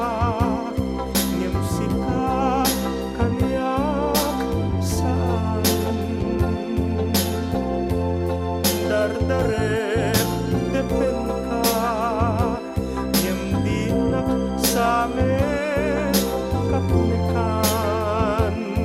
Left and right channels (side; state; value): both; identical; correlation 1.00